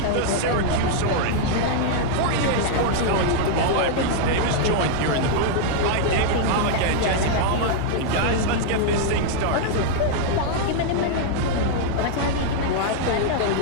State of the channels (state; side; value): different; both; correlation -0.01